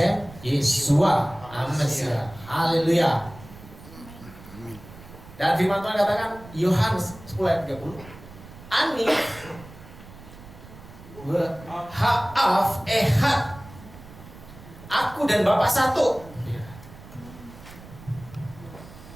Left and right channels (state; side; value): noise; right; rumble, 18 dB below the sound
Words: Yeshua Amasiah. Haleluya. Dan firman Tuhan katakan Yohanes 10 ayat 30, Ani ha'af ehad, aku dan Bapa satu.